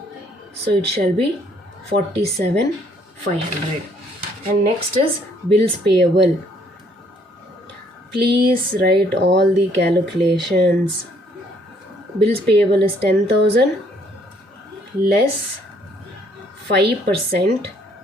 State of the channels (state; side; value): normal; both; correlation 0.65